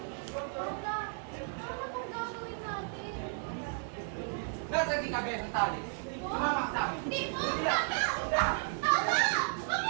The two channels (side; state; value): left; silent; 55 dB below the other